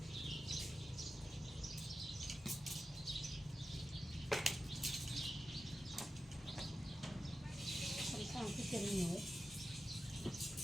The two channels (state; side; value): normal; both; correlation 0.92